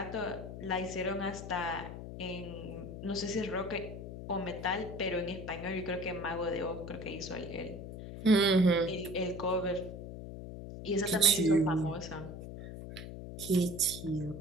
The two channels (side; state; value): left; noise; hum, 10 dB below the sound